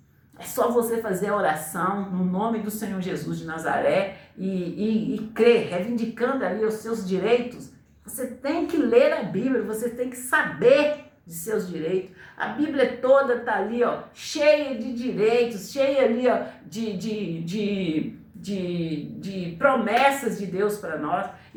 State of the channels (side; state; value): both; identical; correlation 1.00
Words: É só você fazer a oração no nome do Senhor Jesus de Nazaré e crer, reivindicando ali os seus direitos. Você tem que ler a Bíblia, você tem que saber de seus direitos. A Bíblia toda está ali, ó, cheia de direitos, cheia ali, ó, de promessas de Deus para nós.